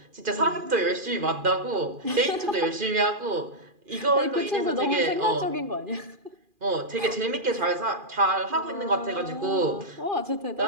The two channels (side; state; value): left; late; 2.4 ms